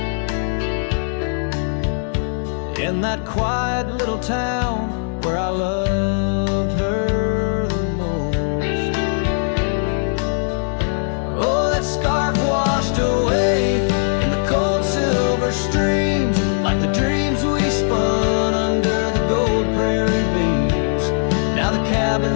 In that quiet little town where I loved her the most. Oh, that scarf washed away in the cold silver streams, like the dreams we spun under the gold prairie beams. Now the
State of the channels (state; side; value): silent; right; digital silence